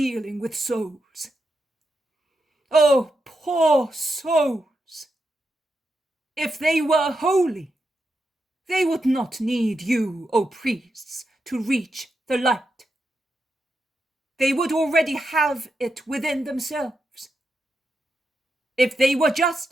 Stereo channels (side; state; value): both; normal; correlation 0.85